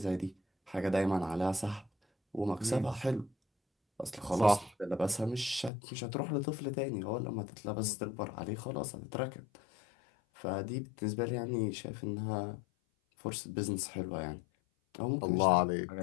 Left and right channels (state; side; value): drops out; right; at 5.7 s